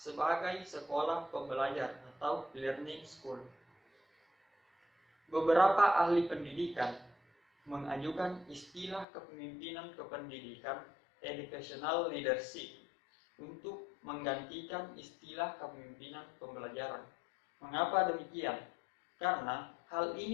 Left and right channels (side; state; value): right; drops out; at 9.1 s